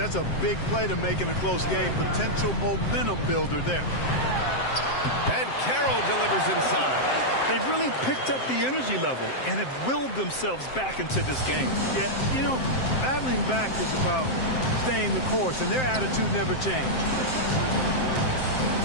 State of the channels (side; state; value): right; late; 7.7 ms